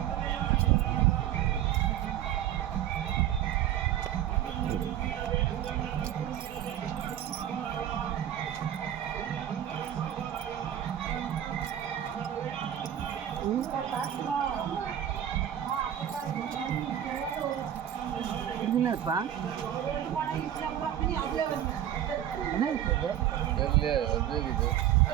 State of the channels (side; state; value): left; quieter; 10.8 dB